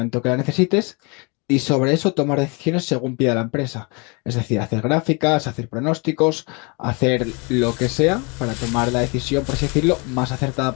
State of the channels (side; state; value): right; quieter; 30.9 dB